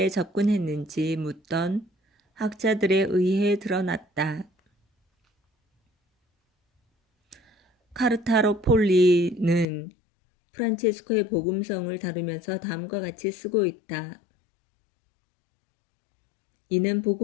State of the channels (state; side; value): drops out; right; at 9.7 s